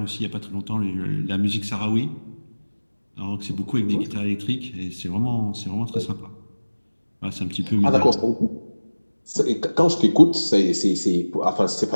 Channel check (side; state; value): both; inverted; correlation -1.00